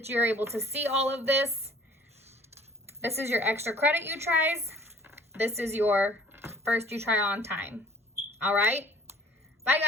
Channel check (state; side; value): normal; both; correlation 0.52